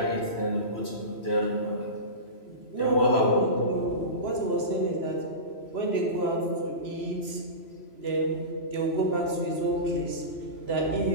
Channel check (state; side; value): late; right; 3.0 ms